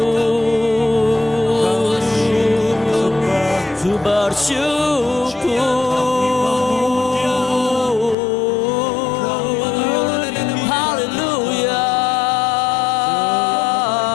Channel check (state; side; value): drops out; right; at 8.2 s